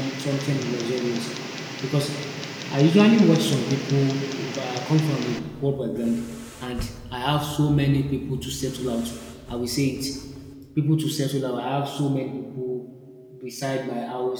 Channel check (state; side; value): identical; both; correlation 1.00